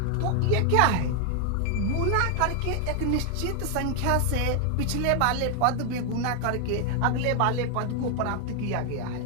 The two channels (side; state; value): both; different; correlation 0.00